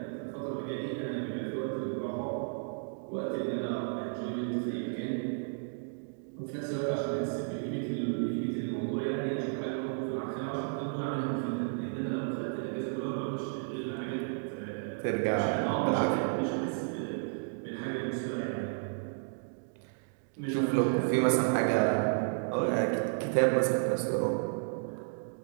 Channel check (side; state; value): left; silent; digital silence